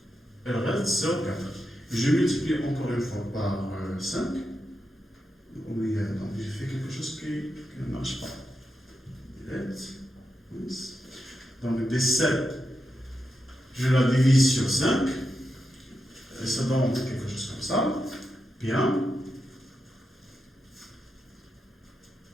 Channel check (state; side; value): normal; both; correlation 0.87